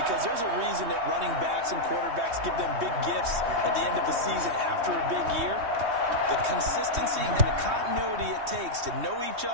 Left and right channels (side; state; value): left; late; 3.2 ms